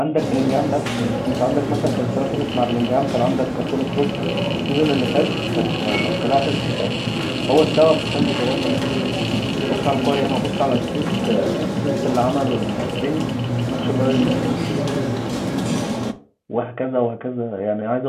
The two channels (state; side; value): identical; both; correlation 1.00